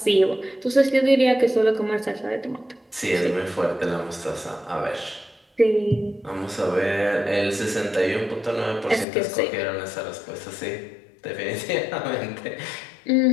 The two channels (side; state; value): right; drops out; at 9.1 s